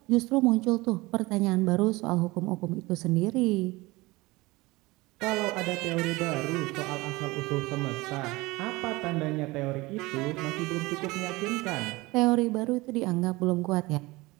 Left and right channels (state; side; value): quieter; left; 21.8 dB